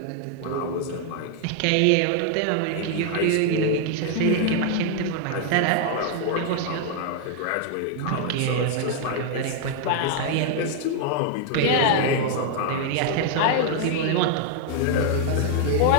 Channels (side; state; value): both; different; correlation 0.00